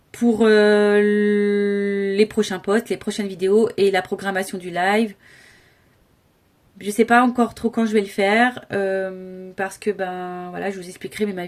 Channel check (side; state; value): both; identical; correlation 1.00